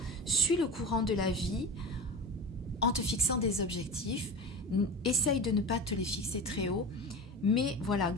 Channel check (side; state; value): both; normal; correlation 0.28